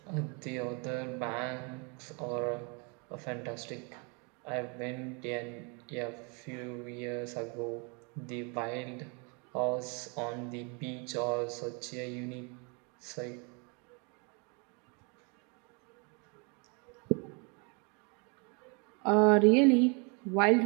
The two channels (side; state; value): left; quieter; 33.5 dB